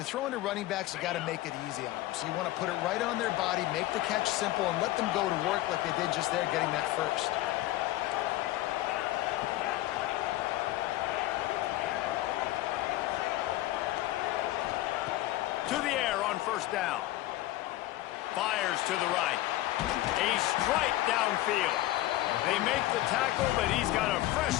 throwing to running backs, you got to make it easy on them. So you want to put it right on their body, make the catch simple, and let them go to work like they did just there, getting that first. To the air on 1st down. Fires to the right. A strike downfield. They make the tackle, but he's got a fresh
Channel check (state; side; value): quieter; right; 16.1 dB